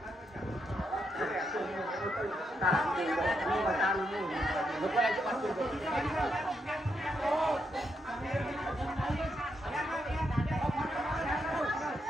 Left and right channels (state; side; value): normal; both; correlation 0.80